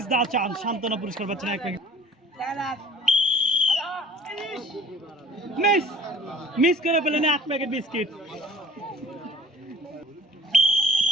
দা চান্স, সান্ত্বনা পুরস্কার পাচ্ছেন এক প্যাকেট। মিস করে পেলেন এক প্যাকেট বিস্কিট।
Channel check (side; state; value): both; normal; correlation 0.52